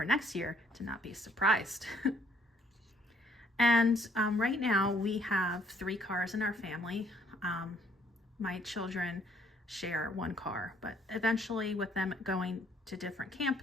next year to not be surprised. And right now we have 3 cars in our family. My children share 1 car, but eventually with them going to different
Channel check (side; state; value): both; normal; correlation 0.65